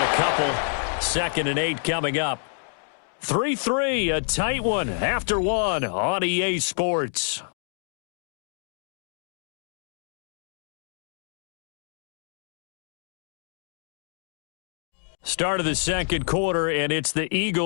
a couple. 2nd and 8 coming up. 3-3, a tight one after 1 on EA Sports. Start of the 2nd quarter, and it's the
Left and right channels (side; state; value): right; silent; digital silence